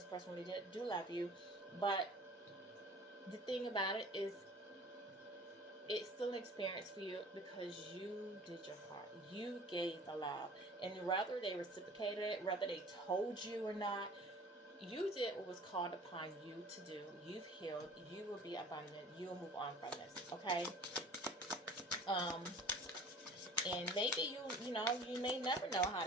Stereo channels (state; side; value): normal; both; correlation 0.45